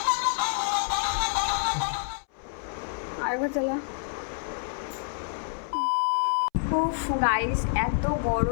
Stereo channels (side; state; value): right; silent; 60 dB below the other